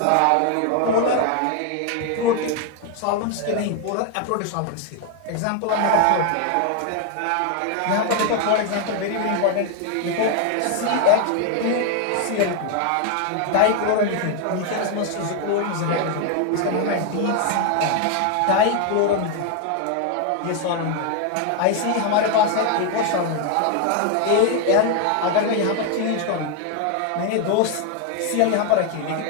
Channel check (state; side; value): different; both; correlation 0.00